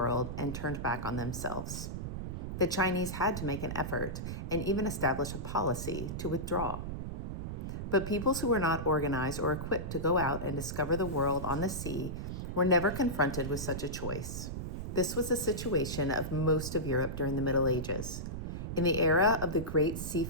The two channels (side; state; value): right; noise; rumble, 5 dB below the sound